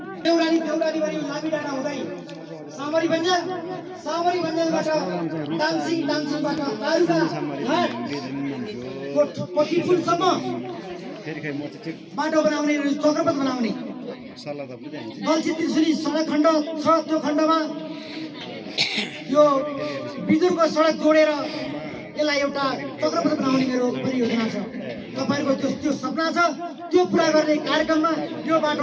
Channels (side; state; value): both; identical; correlation 1.00